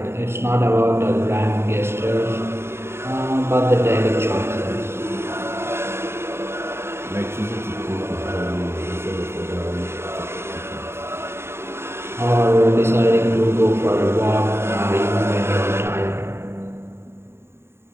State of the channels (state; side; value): late; left; 0.12 ms